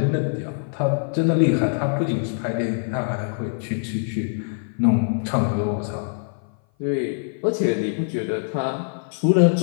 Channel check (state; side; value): silent; right; 56 dB below the other